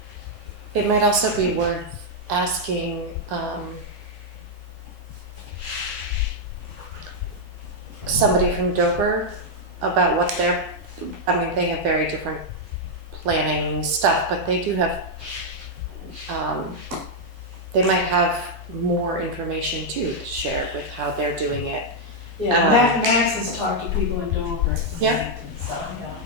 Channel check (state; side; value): normal; both; correlation -0.03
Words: It might also be worth asking somebody from Dover about what they have very different planning stuff, but they do have, they might have more information too to share with how they're doing it. Yeah, Max has talked to people in Dover. Yeah. So,